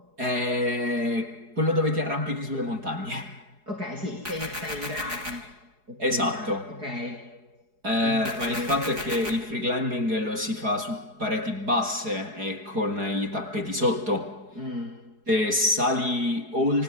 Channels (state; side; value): late; left; 4.8 ms